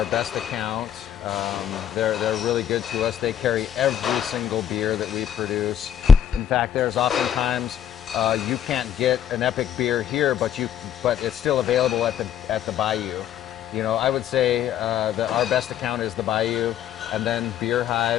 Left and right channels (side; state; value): right; quieter; 9.6 dB